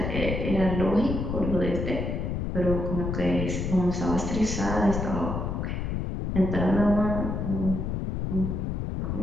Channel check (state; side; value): noise; left; rumble, 2 dB below the sound